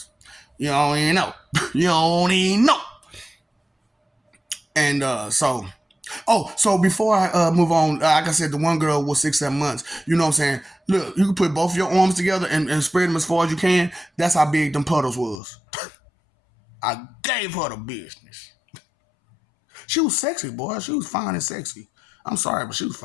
You don't even know. You don't even know. And so before I move on, like I said, the one girl was 6-7 months. You know what I'm saying? Look, you can put both of your arms together and spread them as far as you can. That's how big them puddles was. I gave her the business. She was sexy, boy. She was fine and sexy. I'm sorry, but she was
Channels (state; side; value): drops out; right; at 15.4 s